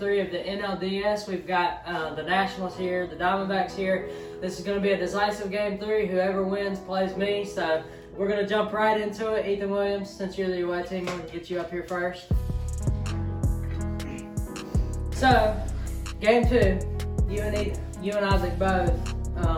of the NLDS. We've got the Nationals here, the Diamondbacks here. This is going to be a decisive Game 3. Whoever wins plays me, so we're going to jump right into it. Ethan Williams, since you're the away team, I'm going to get you up here first. So, Game 2, you and Isaac both,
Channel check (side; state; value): both; identical; correlation 1.00